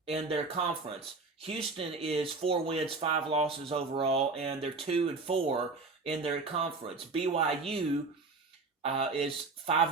in their conference. Houston is 4 wins, 5 losses overall, and they're 2-4 in their conference. BYU is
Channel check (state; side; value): quieter; left; 3.9 dB